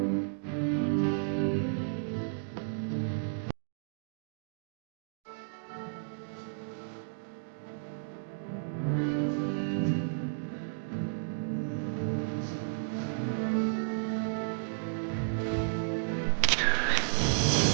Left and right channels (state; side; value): silent; left; digital silence